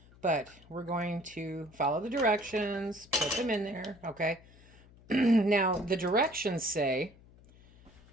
But we're going to follow the directions, put them in there, okay? Now, the directions say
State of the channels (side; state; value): left; noise; hum, 25 dB below the sound